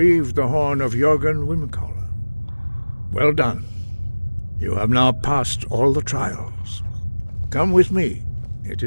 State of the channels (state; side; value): inverted; both; correlation -1.00